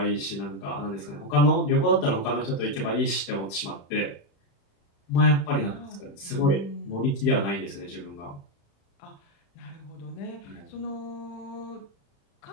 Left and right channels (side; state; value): right; late; 35 ms